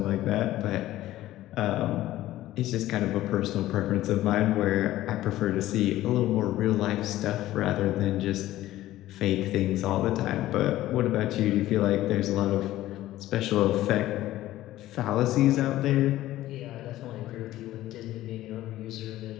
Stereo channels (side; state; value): right; quieter; 15.0 dB